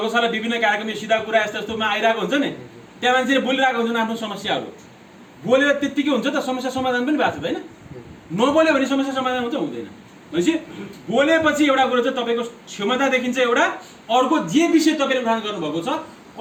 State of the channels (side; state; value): both; identical; correlation 1.00